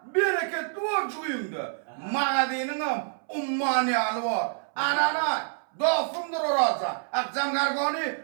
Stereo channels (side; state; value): left; silent; 60 dB below the other